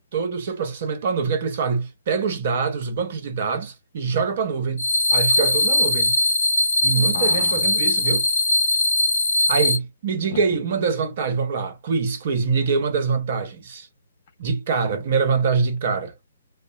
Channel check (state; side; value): inverted; both; correlation -0.70